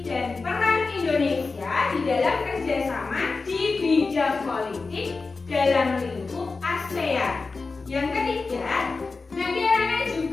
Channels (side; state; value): right; quieter; 4.1 dB